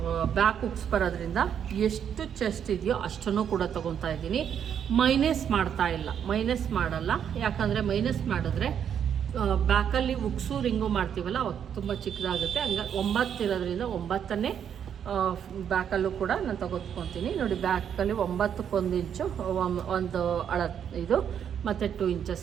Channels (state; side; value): quieter; left; 8.5 dB